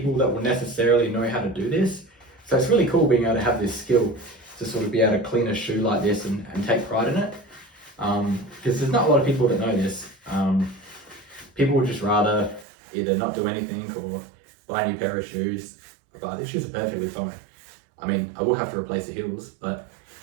that will necessarily know how to do this. So it's really cool being able to have this skill to sort of be able to clean a shoe like this and take pride in it. Because there's not a lot of people that know this. People would just rather either not do anything or buy a new pair of shoes. But these shoes are perfectly fine. I mean, I will have to replace the heels, but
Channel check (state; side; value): drops out; left; at 12.7 s